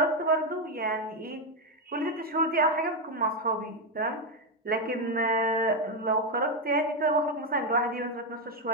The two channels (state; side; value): normal; both; correlation 0.05